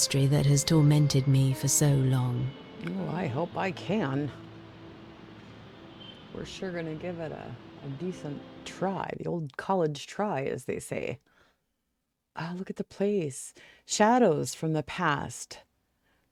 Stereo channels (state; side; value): identical; both; correlation 1.00